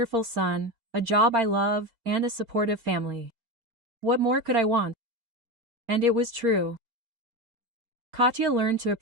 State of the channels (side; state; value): left; late; 4.3 ms